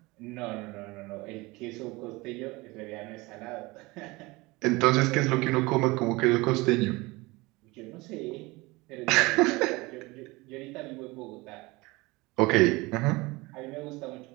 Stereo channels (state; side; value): quieter; left; 22.8 dB